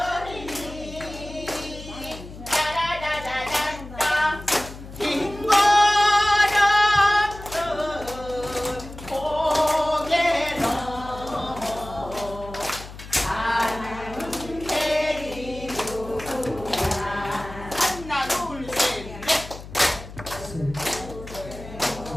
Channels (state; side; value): noise; left; hum, 14 dB below the sound